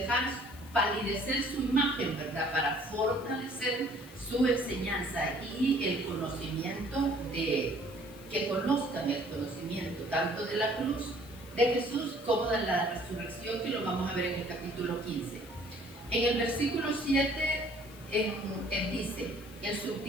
palidecer su imagen, ¿verdad? Para fortalecer su enseñanza y el conocimiento que conozcan el conocimiento tanto de la cruz de Jesús como de la resurrección, que lo vamos a ver en el capítulo 15. En el versículo 7 dice, el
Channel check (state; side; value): noise; left; hiss, 21 dB below the sound